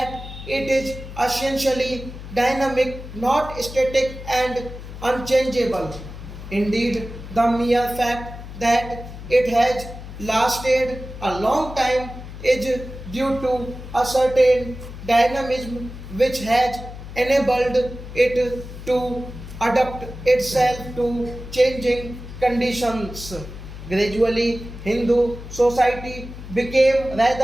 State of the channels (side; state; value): left; noise; hum, 12 dB below the sound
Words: it is essentially dynamic, not static and unchangeable. Indeed, the mere fact that it has lasted a long time is due to a certain dynamism which has enabled it to adapt itself to changing conditions. Gradually, Hindu society became